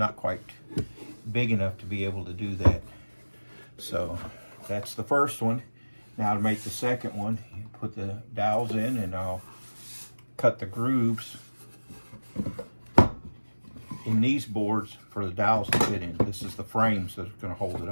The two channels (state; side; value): inverted; both; correlation -1.00